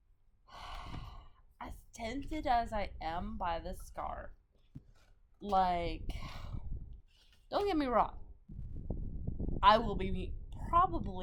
as tempted as I am by this scarf, like, don't get me wrong, I will be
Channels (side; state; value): both; identical; correlation 1.00